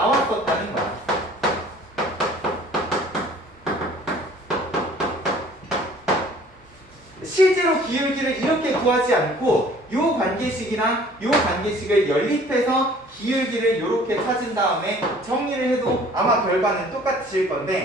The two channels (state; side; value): normal; both; correlation 0.52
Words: 거야. 실제로 기울기를 이렇게 구하지 않고 요 관계식이랑 요 관계식을 연립해서 기울기를 이렇게 찾은 다음에 정리를 해도 아마 결과는 똑같으실